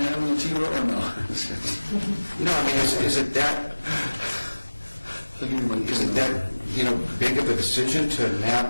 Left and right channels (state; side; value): inverted; both; correlation -1.00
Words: in the T-Row, or no? No, I mean, is it that big of a decision to